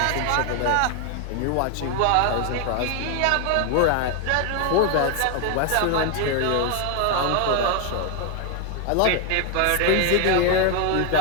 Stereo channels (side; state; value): both; different; correlation 0.01